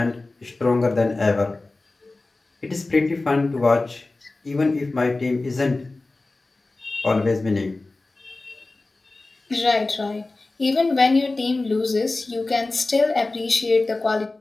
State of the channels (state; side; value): quieter; right; 3.2 dB